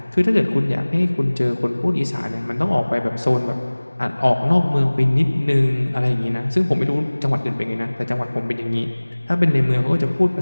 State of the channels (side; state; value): both; inverted; correlation -1.00